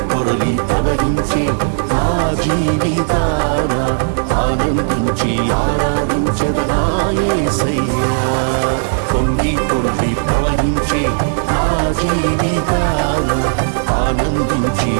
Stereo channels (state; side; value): silent; left; digital silence